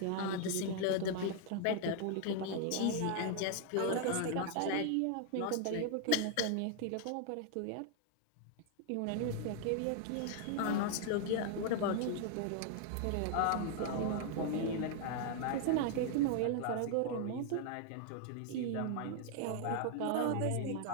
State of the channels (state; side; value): different; both; correlation 0.00